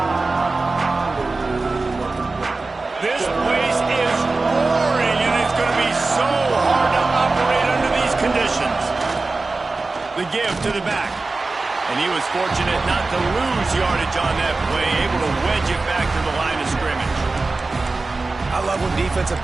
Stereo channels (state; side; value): quieter; left; 3.6 dB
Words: This place is roaring, and it's going to be so hard to operate under these conditions. The give to the back. And he was fortunate not to lose yardage on that play, able to wedge it back to the line of scrimmage. I love when defensive